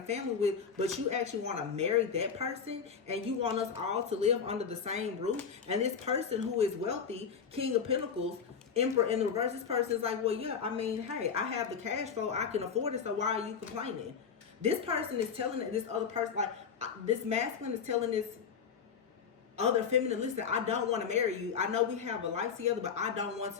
family with, but you actually want to marry that person and you want us all to live under the same roof? And this person who is wealthy, King of Pentacles, Emperor in the reverse, this person is like, well, yeah, I mean, hey, I have the cash flow, I can afford it, so why are you complaining? This person is telling this other person, like this masculine is telling this other feminine, listen, I don't want to marry you. I know we have a life together, but I don't want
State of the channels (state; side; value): quieter; right; 6.6 dB